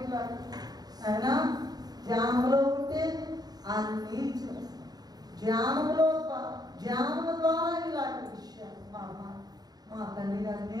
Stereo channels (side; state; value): left; late; 0.19 ms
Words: అయినా ధ్యానంలో ఉంటే అన్నీ ధ్యానము ద్వారా ఇలాంటి విషయాలు మా తండ్రి గారు